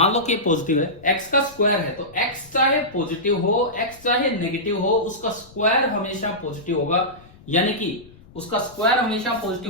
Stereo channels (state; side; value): noise; left; rumble, 23 dB below the sound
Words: लो कि पॉजिटिव है, x का स्क्वायर है, तो x चाहे पॉजिटिव हो x चाहे नेगेटिव हो, उसका स्क्वायर हमेशा पॉजिटिव होगा। यानी कि उसका स्क्वायर हमेशा